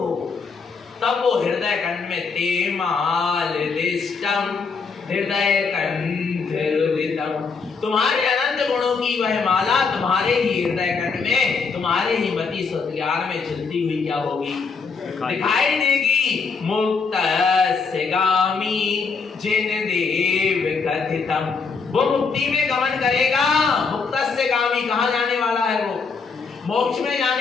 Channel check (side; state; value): right; quieter; 5.0 dB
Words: तब वो हृदय कंठ में तेमालिष्टम हृदय कंठितम, तुम्हारे अनंत गुणों की वह माला तुम्हारे ही हृदय कंठ में, तुम्हारे ही मति सत्यान में चलती हुई क्या होगी, दिखाई देगी। मुक्त गामी जिन देव कथितम, वो मुक्ति में गमन करेगा। मुक्त से गामी, कहाँ जाने वाला है वो? मोक्ष में